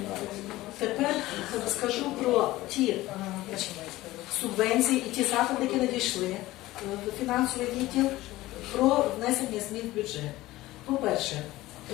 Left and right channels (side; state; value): right; quieter; 17.4 dB